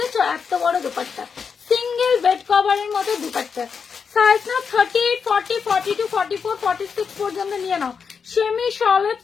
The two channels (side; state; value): right; quieter; 6.1 dB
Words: এত বড় দুপাট্টা, সিঙ্গেল বেড কভারের মতো দুপাট্টা, সাইজ নাও 38, 40, 42, 44, 46 পর্যন্ত নিয়ে নাও। সেমি শলের